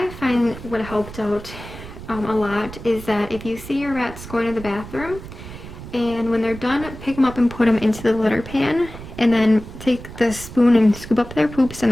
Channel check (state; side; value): noise; right; rumble, 13 dB below the sound